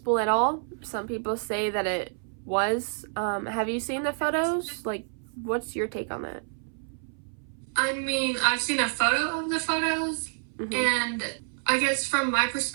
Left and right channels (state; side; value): silent; left; 59 dB below the other